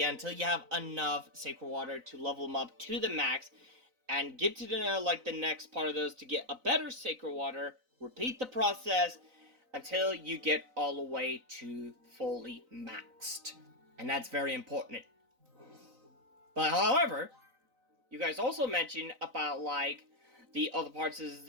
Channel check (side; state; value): left; late; 3.9 ms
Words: until you have enough sacred water to level them up to the max, and get to the next part of those to get a better sacred water. Repeat the process until you get all the way to fully maxed, and that's very important. But however, you guys also mentioned about like the other parts is